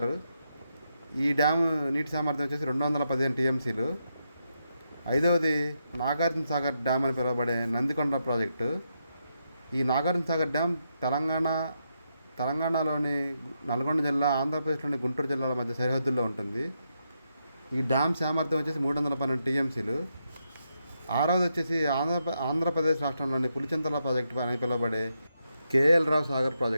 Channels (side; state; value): both; inverted; correlation -0.83